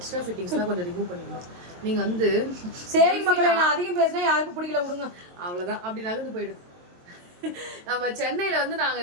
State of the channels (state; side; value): late; left; 22 ms